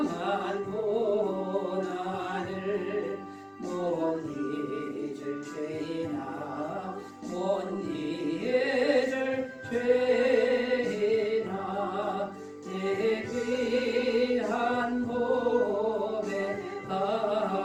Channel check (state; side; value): identical; both; correlation 1.00